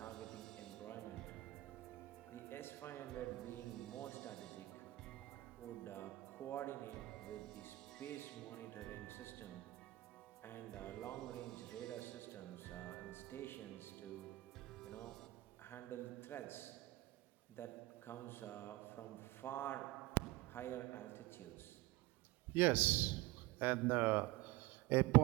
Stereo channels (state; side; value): quieter; left; 19.0 dB